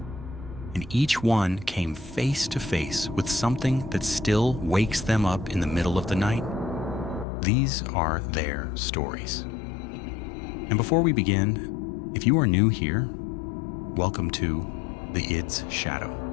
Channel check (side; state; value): right; drops out; at 7.2 s